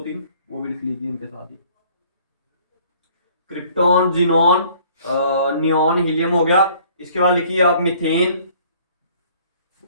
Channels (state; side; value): inverted; both; correlation -0.56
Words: वो भी लिख लीजिए इनके साथ ही। क्रिप्टॉन, जिनॉन, नियॉन, हीलियम हो गया। इसके बाद लिखिए आप मीथेन,